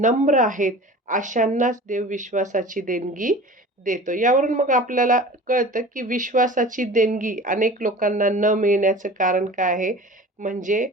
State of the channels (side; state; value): both; normal; correlation 0.39